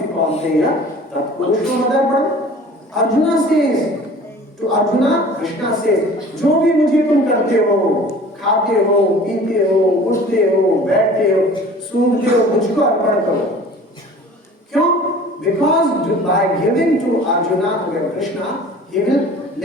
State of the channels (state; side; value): normal; both; correlation 0.45